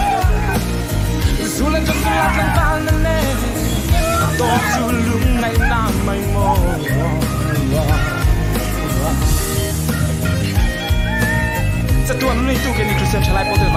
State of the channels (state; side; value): identical; both; correlation 1.00